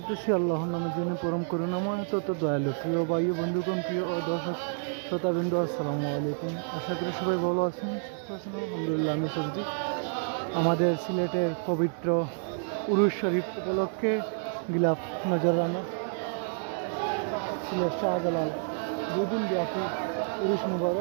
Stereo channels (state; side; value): silent; left; digital silence